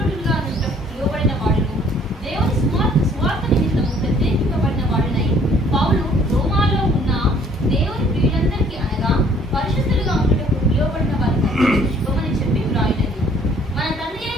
పిలువబడిన వాడును, దేవుని సువార్త నిమిత్తము ప్రత్యేకింపబడిన వాడునై పౌలు రోమాలో ఉన్న దేవుని ప్రియులందరికీ అనగా పరిశుద్ధులుగా ఉండుటకు పిలువబడిన వారికి శుభమని చెప్పి వ్రాయినది. మన తండ్రి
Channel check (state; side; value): normal; both; correlation 0.59